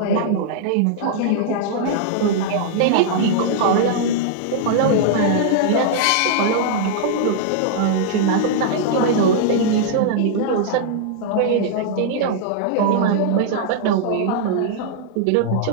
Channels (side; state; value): both; different; correlation -0.01